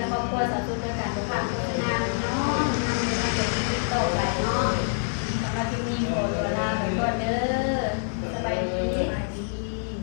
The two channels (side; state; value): right; silent; digital silence